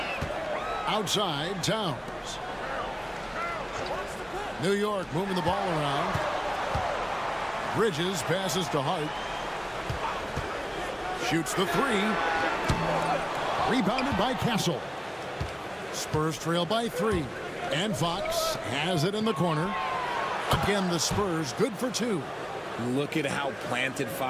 Outside, Towns. New York moving the ball around. Bridges passes to Hart. Shoots the 3. Rebounded by Castle. Spurs trail by 3. And Fox has it in the corner. Again, the Spurs good for 2. Look at how planted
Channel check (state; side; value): identical; both; correlation 1.00